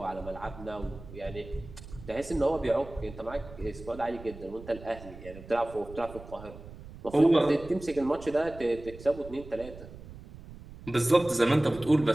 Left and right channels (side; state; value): right; noise; rumble, 16 dB below the sound